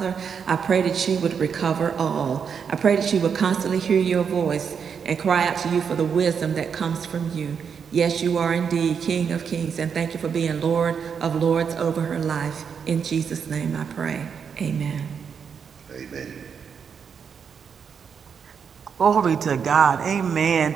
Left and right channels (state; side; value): quieter; left; 6.8 dB